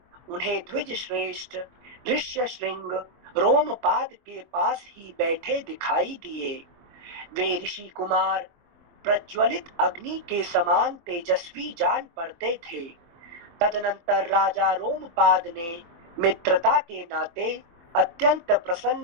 उन्हें द्विज श्रेष्ठ ऋष्यशृंग रोमपाद के पास ही बैठे दिखाई दिए। वे ऋषि कुमार प्रज्वलित अग्नि के समान तेजस्वी जान पड़ते थे। तदनंतर राजा रोमपाद ने मित्रता के नाते अत्यंत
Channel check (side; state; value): left; late; 24 ms